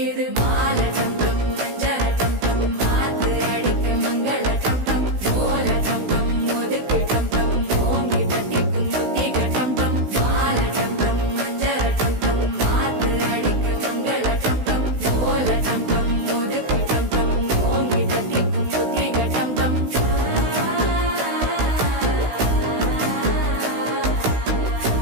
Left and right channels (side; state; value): left; late; 16 ms